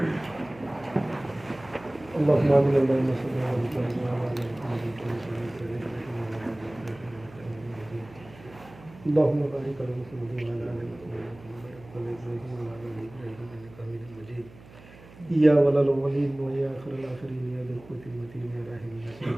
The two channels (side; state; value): right; noise; hum, 21 dB below the sound